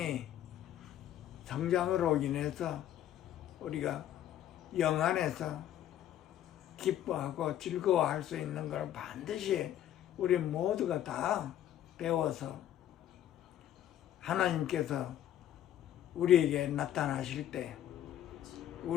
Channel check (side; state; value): right; quieter; 11.6 dB